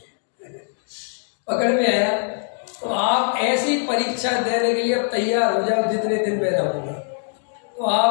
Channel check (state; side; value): silent; right; 64 dB below the other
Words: पकड़ में आया। तो आप ऐसी परीक्षा देने के लिए अब तैयार हो जाओ, जितने दिन में रहूंगा तो